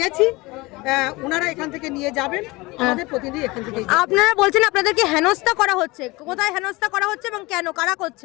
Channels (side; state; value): right; quieter; 22.7 dB